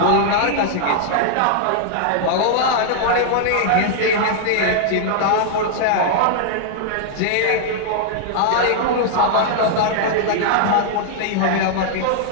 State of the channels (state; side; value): different; both; correlation -0.01